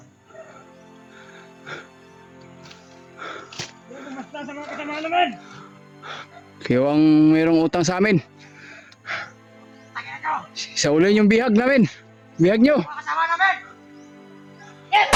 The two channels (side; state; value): both; identical; correlation 1.00